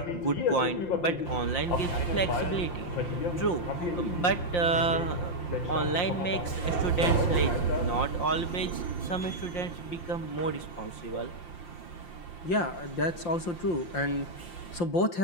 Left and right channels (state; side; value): late; right; 5.7 ms